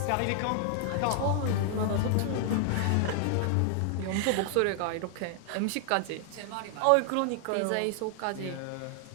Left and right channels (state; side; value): different; both; correlation 0.00